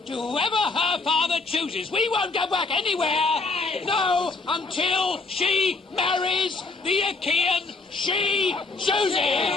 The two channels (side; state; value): right; quieter; 3.8 dB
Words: to whoever her father chooses. We won't go back anywhere. No, until she marries the Achaean she chooses.